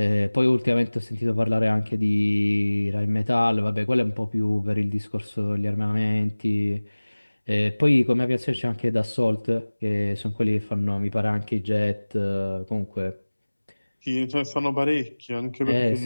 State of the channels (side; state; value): both; inverted; correlation -1.00